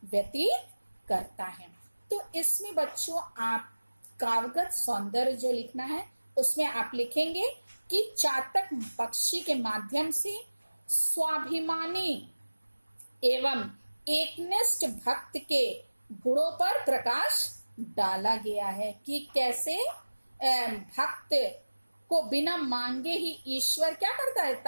व्यतीत करता है। तो इसमें बच्चों आप काव्यगत सौंदर्य जो लिखना है उसमें आप लिखेंगे कि चातक पक्षी के माध्यम से स्वाभिमानी एवं एकनिष्ठ भक्त के गुणों पर प्रकाश डाला गया है कि कैसे भक्त को बिना मांगे ही ईश्वर क्या कर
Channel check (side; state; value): both; inverted; correlation -1.00